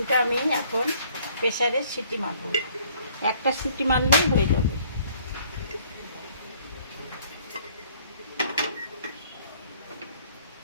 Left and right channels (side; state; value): both; inverted; correlation -0.60